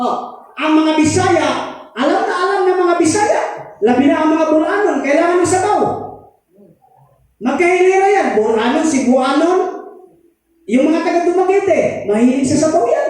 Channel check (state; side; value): identical; both; correlation 1.00